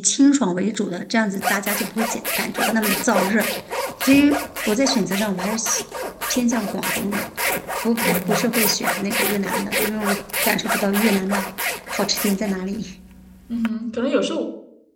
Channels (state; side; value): identical; both; correlation 1.00